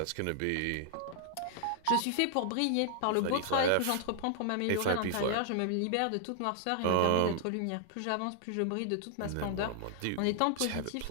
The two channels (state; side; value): different; both; correlation 0.00